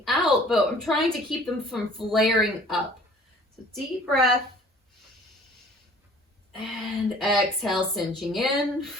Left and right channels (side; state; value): both; normal; correlation 0.52